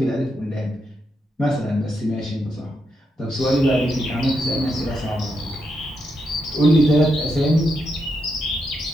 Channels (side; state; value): both; normal; correlation 0.82